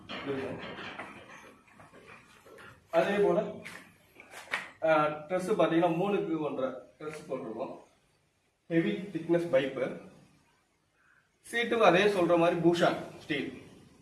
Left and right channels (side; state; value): both; identical; correlation 1.00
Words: அதே போல் ட்ரெஸ்ஸு பார்த்தீங்கன்னா 3க்கு 1.5 ட்ரெஸ் போட்டிருக்கோம். Heavy thickness pipe. சீட்டுக்கு அதே சொல்கிற மாதிரி பூஷான் ஸ்டீல்